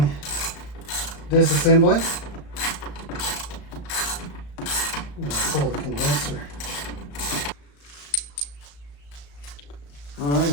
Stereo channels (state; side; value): late; right; 35 ms